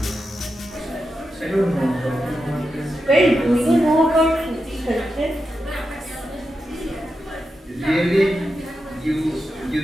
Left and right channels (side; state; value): both; normal; correlation 0.88